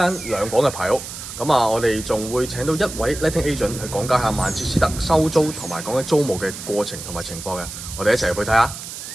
2房嘅排屋。咁啊，我哋仲會請到一位 letting agent 去講解下曼徹斯特收租同埋講緊租務嘅過程同埋情況嘅。我哋一齊入去睇下。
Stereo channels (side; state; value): right; noise; hiss, 10 dB below the sound